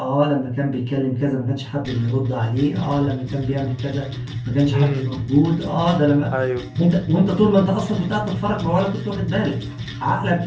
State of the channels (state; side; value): identical; both; correlation 1.00